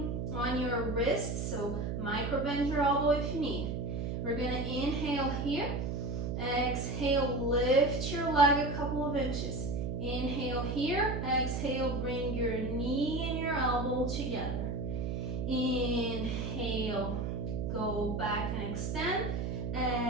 on your wrist, so micro bend your elbow if you need. We're going to inhale here. Exhale, lift your leg a couple of inches. Inhale here. Exhale, bring your knee and your elbow together. Inhale, go back and extend.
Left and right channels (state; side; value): noise; right; hum, 2 dB below the sound